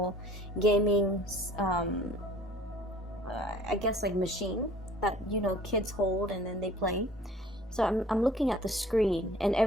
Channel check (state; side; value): normal; both; correlation 0.50